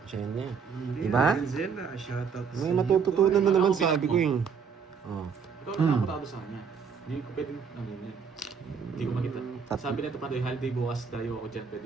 Siya niya. Hindi, Diba? Renzela, shoutout sa May iyo, matututunan boy. na naman, Ako, bilang sabi mo. ko eh. Oh. ikaw na nakapatado sa kanya. Hindi ko pwedeng, ano yun. Hindi ko makita. Sabi nito Pandoy, holiday bukas tayo ako dyan, pwede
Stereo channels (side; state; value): left; quieter; 6.2 dB